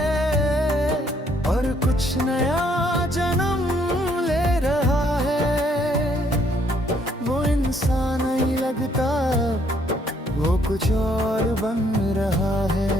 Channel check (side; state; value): both; normal; correlation 0.67